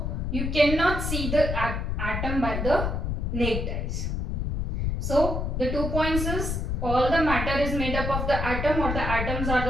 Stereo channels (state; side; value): noise; left; rumble, 1 dB below the sound